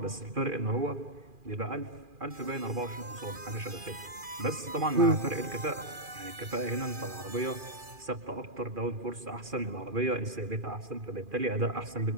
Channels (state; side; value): late; left; 2.4 ms